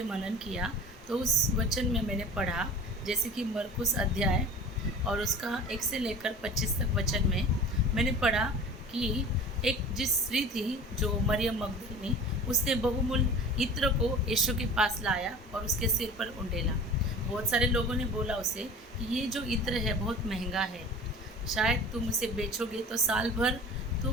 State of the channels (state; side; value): normal; both; correlation 0.39